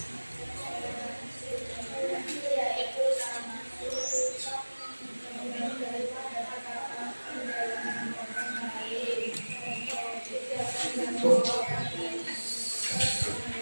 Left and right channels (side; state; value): both; inverted; correlation -1.00